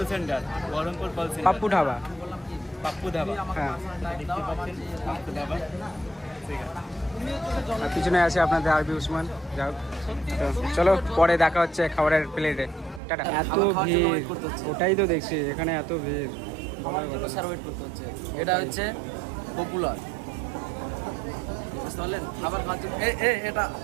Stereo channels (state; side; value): drops out; left; at 13.0 s